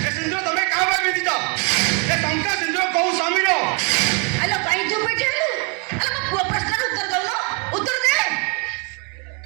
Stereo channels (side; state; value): left; quieter; 34.9 dB